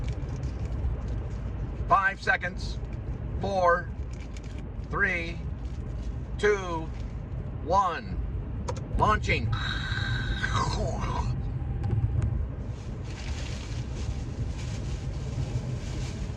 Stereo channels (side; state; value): both; identical; correlation 1.00